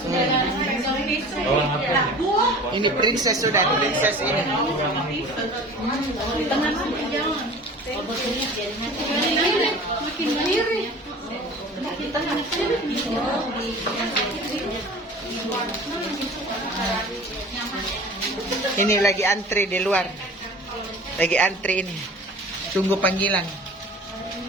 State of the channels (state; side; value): normal; both; correlation 0.41